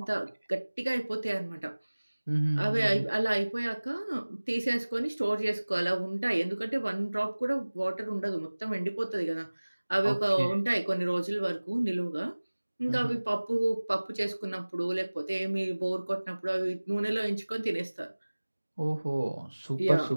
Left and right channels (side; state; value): both; inverted; correlation -1.00